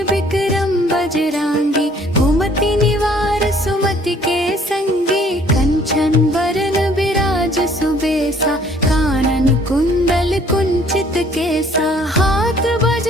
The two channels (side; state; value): both; normal; correlation 0.58